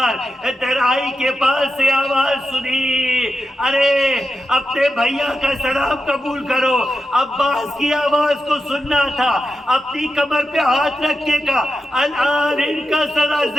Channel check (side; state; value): both; normal; correlation 0.89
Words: ترائی کے پاس سے آواز سنی، ارے اپنے بھیا کا سلام قبول کرو، عباس کی آواز کو سننا تھا، اپنی کمر پہ ہاتھ رکھنے کا، الان ان کا سرا